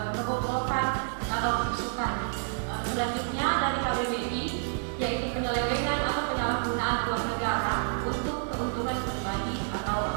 kebobrokan atau kerusukan. Selanjutnya dari KBBI yaitu penyelewengan atau penyalahgunaan uang negara untuk keuntungan pribadi atau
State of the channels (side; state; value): left; silent; digital silence